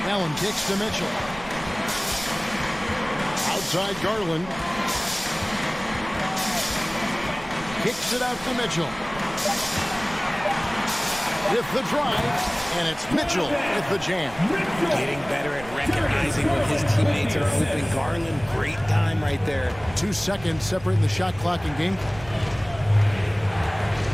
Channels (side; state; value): right; noise; rumble, 17 dB below the sound